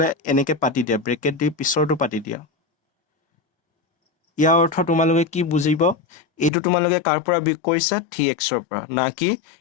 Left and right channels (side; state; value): right; drops out; at 6.5 s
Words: এনেকৈ পাতি দিয়া, ব্ৰেকেট দি পিছৰটো পাতি দিয়া, ইয়াৰ অৰ্থ তোমালোকে কি বুজিব, এইটো তোমালোকে কাৰ পৰা বিয়োগ কৰিছা, 3xৰ পৰা, না কি